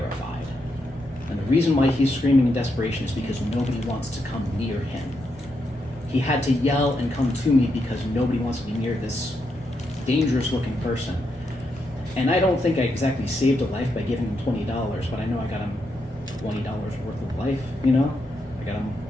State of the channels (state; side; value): normal; both; correlation 0.82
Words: And the reason why he's screaming in desperation is because nobody wants to come near him. He had to yell and come to me because nobody wants to be near this dangerous looking person. And I don't think I exactly saved a life by giving him $20, but I know I got him $20 worth of life, I got him